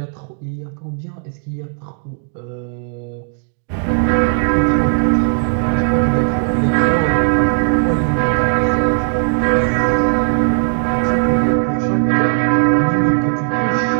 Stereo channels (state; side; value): silent; left; 63 dB below the other